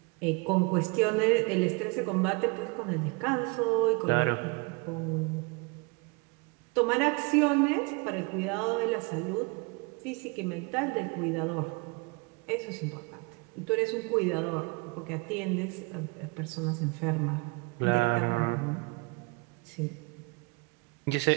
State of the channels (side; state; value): left; quieter; 29.6 dB